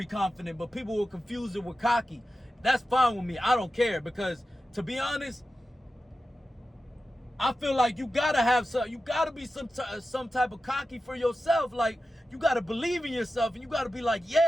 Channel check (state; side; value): normal; both; correlation 0.92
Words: confident, but people will confuse it with cocky. That's fine with me. I don't care, because to be honest, I feel like you gotta have some, you gotta be some type of cocky for yourself. Like, you gotta believe in yourself, and you gotta be like,